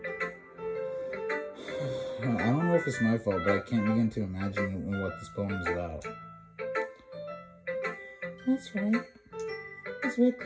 I don't know if it's my fault, but I can't begin to imagine what this poem is about. That's right. It's way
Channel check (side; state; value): both; identical; correlation 1.00